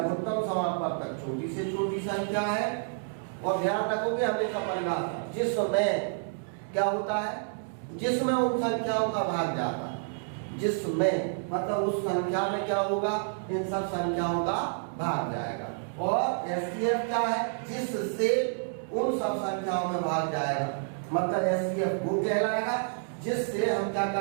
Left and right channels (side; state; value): left; silent; digital silence